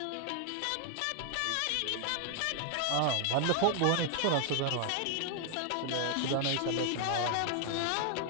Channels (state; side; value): different; both; correlation 0.00